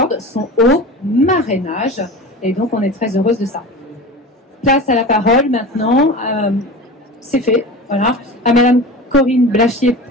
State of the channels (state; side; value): normal; both; correlation 0.32